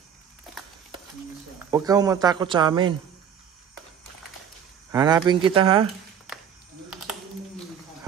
Huwag kang matakot sa amin. Hanapin kita ha.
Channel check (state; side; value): quieter; left; 8.2 dB